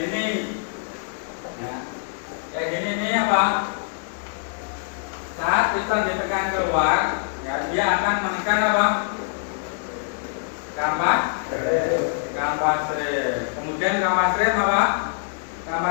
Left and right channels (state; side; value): silent; right; digital silence